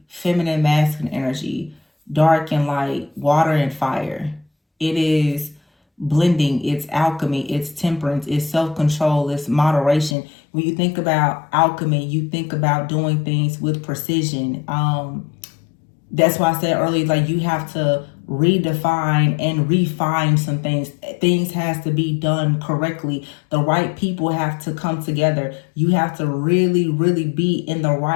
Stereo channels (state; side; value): drops out; right; at 10.2 s